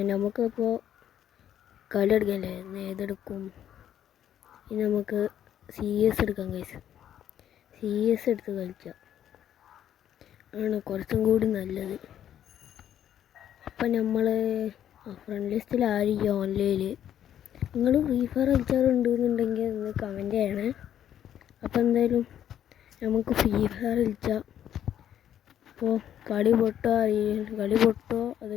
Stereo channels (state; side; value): quieter; right; 10.4 dB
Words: നമുക്കിപ്പോൾ കളി എടുക്കല്ലേ, ഏതെടുക്കും? ഇനി നമുക്ക് CS എടുക്കാം ഗൈസ്. CS എടുത്ത് കളിക്കാം ആണ് കുറച്ചും കൂടി നല്ലത്. അപ്പം നമ്മൾ ഫ്രണ്ട് ലിസ്റ്റിൽ ആയിരിക്കും ഓൺലൈനിൽ. നിങ്ങൾ ഫ്രീ ഫയർ കളിച്ചാറുണ്ടെന്നുണ്ടെങ്കിൽ ഒന്ന് കമൻറ്റ് ചെയ്യണേ. അപ്പം എന്തായാലും നമുക്ക് ഫ്രീ ഫയർ കളിച്ചാൽ. അപ്പോൾ കളി പൊട്ടോ അത്